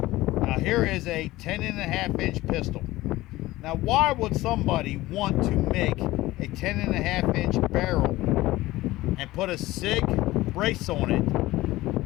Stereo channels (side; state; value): right; quieter; 17.8 dB